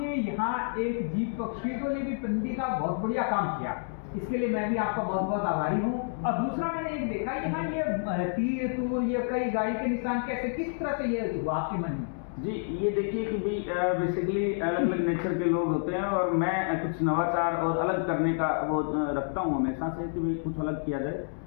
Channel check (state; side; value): silent; right; digital silence